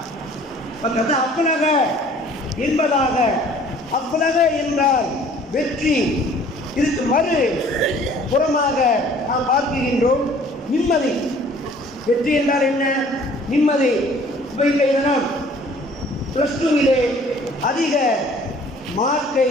கது அப்லக என்பதாக, அப்லக என்றால் வெற்றி. இதுக்கு மறு புறமாக நாம் பார்க்கின்றோம் நிம்மதி. வெற்றி என்றால் என்ன? நிம்மதி. இப்போ இன்றைய தினம் +2 அதிக மார்க்கை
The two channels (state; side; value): normal; both; correlation 0.53